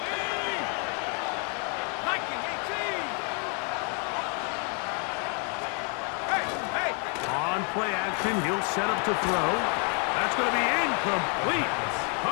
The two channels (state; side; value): quieter; right; 38.4 dB